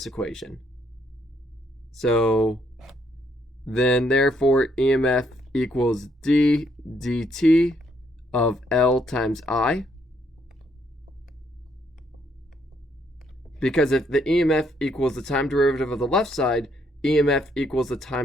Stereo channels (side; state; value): both; normal; correlation 0.72